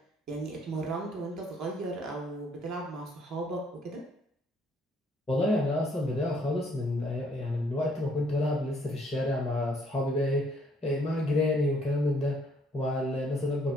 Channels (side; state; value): both; normal; correlation 0.65